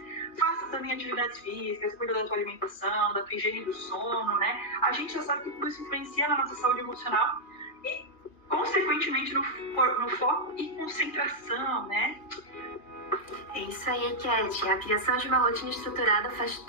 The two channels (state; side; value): late; right; 2.3 ms